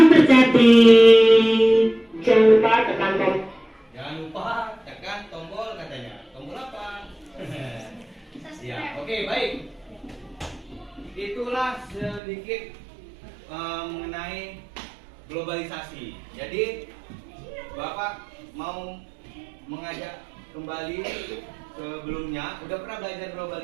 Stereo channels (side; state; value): left; drops out; at 12.2 s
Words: Jangan lupa tekan tombol. Jangan lupa tekan tombol katanya. Tombol apa? Ya, oke, baik. Itulah sedikit mengenai globalisasi. Jadi Bapak mau mengajak kembali sebelumnya. Udah pernah belajar